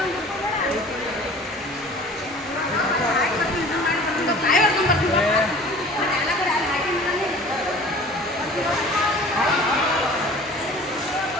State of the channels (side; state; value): both; normal; correlation 0.45